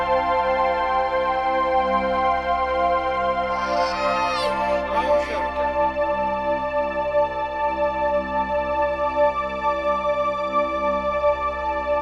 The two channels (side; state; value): both; identical; correlation 1.00